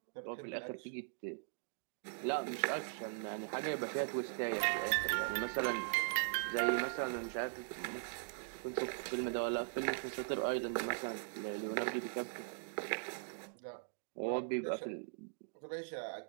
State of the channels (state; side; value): silent; left; digital silence